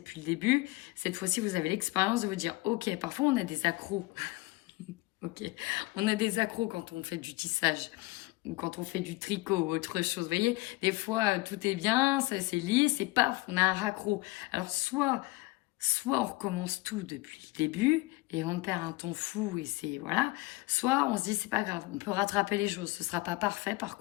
le début, cette fois-ci, vous avez l'expérience de vous dire, ok, parfois on a des accros. Ok, on a des accros quand on fait du tissage ou quand on fait du tricot ou autre chose. Vous voyez, des fois, tout est bien, ça c'est lisse et paf, on a un raccro. Alors, soit on recommence tout depuis le début et on perd un temps fou et c'est, voilà. Soit on se dit, c'est pas grave, on peut rattraper les choses. Ce sera pas parfait par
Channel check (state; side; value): quieter; right; 21.8 dB